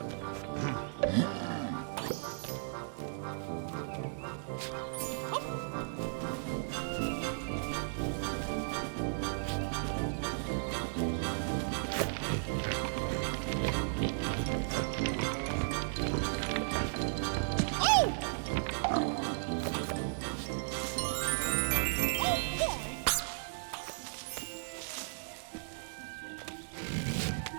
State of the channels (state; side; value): silent; left; digital silence